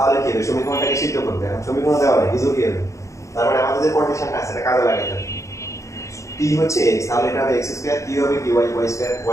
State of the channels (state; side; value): late; right; 0.15 ms